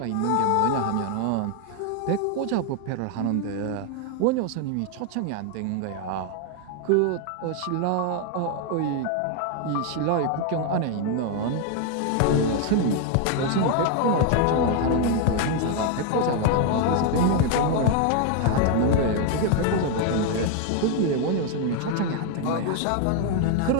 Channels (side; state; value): both; different; correlation 0.00